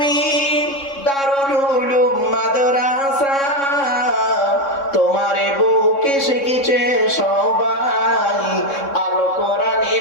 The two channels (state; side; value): late; right; 3.6 ms